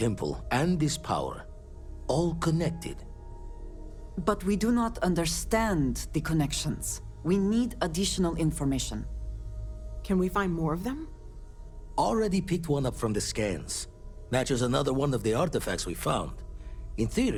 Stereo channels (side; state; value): both; identical; correlation 1.00